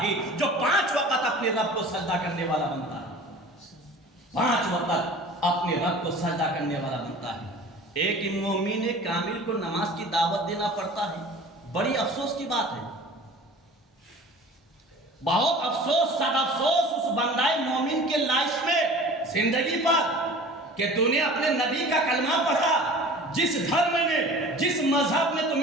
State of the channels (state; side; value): normal; both; correlation 0.42